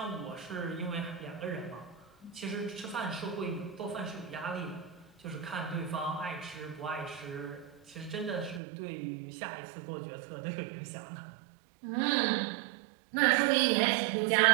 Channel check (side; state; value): left; drops out; at 8.6 s